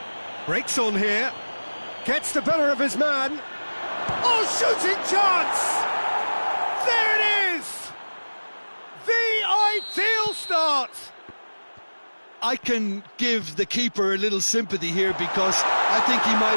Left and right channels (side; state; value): both; inverted; correlation -1.00